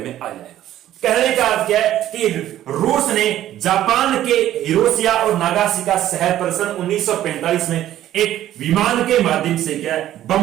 में आ जाएगा। कहने का अर्थ क्या है कि रूस ने जापान के हिरोशिया और नागासाकी शहर पर सन 1945 में एक विमान के माध्यम से क्या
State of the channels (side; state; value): left; quieter; 12.7 dB